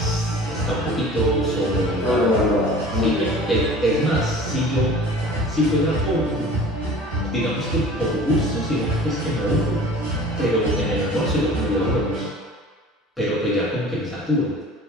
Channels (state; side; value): normal; both; correlation 0.43